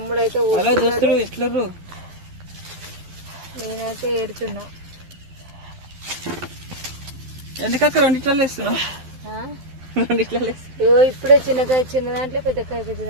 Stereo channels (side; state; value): left; late; 12 ms